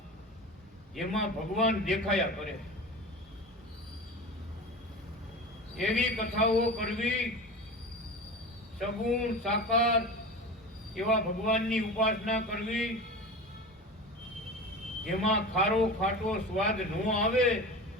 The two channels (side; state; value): both; normal; correlation 0.31